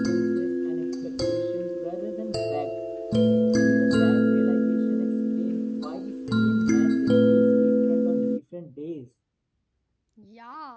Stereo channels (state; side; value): identical; both; correlation 1.00